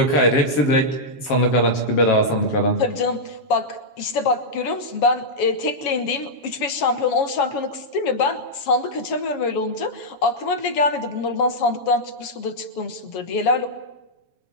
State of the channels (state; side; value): late; right; 7.2 ms